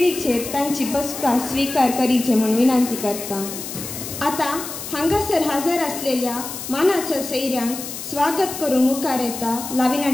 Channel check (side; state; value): left; noise; hiss, 8 dB below the sound